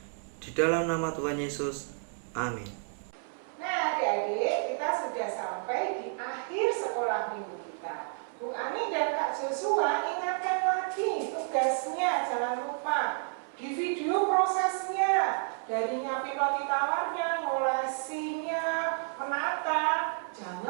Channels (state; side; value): silent; left; 57 dB below the other